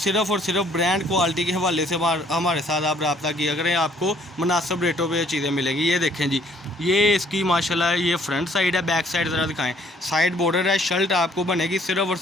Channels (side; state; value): both; normal; correlation 0.62